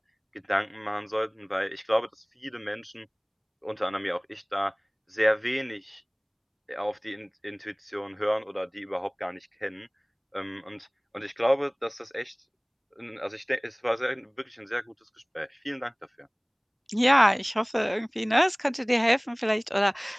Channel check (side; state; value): both; identical; correlation 1.00